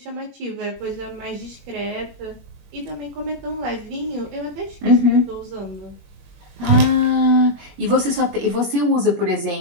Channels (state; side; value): late; left; 21 ms